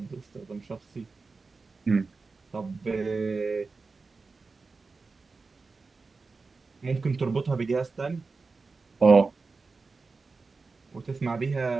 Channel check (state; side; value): quieter; left; 4.1 dB